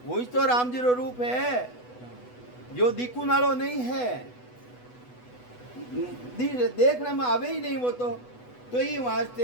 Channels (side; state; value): right; late; 8.1 ms